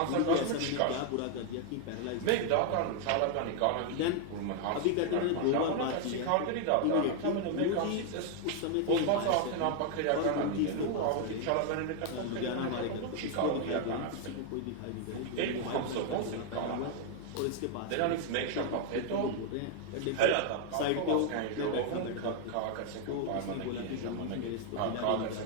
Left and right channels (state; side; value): different; both; correlation 0.00